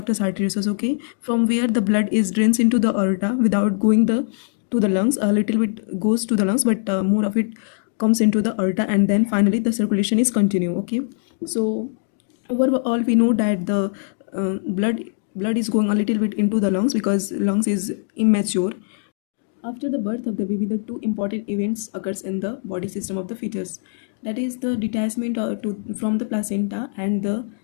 arteriosus. Okay, from where the blood is drains into the aorta without going the to the lungs. A little bit goes to the lungs, but more of it comes into the aorta, and then finally the circulation is continue. Okay, so overall we know that the blood is going a little bit into the lungs because lungs is immature. After the birth of the baby, the two important events occurs in the body system of the fetus, that is the detachment from the placenta and the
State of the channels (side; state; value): right; silent; digital silence